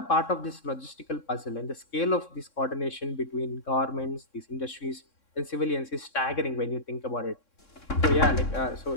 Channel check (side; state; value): right; late; 3.6 ms